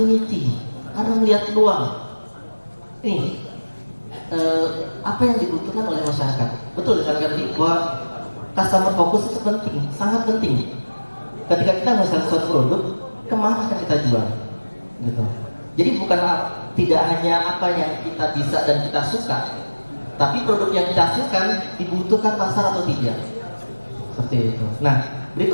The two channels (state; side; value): inverted; both; correlation -1.00